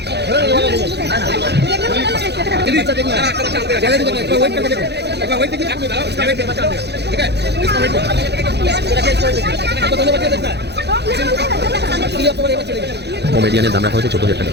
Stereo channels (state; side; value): late; left; 0.49 ms